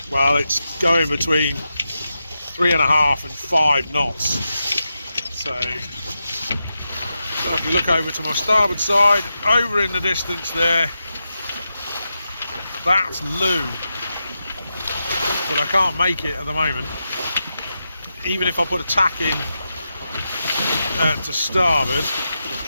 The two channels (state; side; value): inverted; both; correlation -0.88